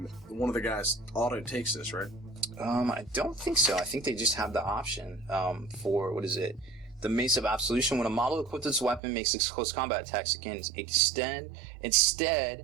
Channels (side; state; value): left; drops out; at 9.0 s